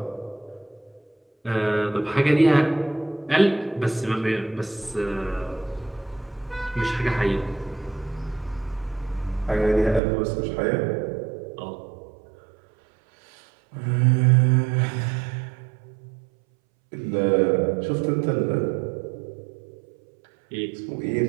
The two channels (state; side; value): drops out; left; at 10.0 s